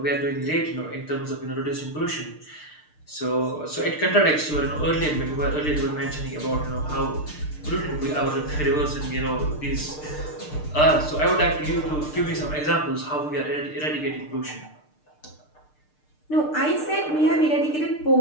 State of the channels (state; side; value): late; right; 6.6 ms